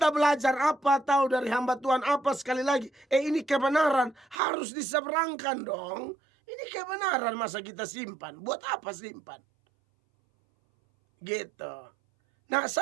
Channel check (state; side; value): drops out; left; at 4.4 s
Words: belajar apa, tahu dari hamba Tuhan apa, sekali lagi. Ini kebenaran, harus diseberangkan dong. Ini kebenaran, masa kita simpan? Buat apa simpan? Gitu. Nah,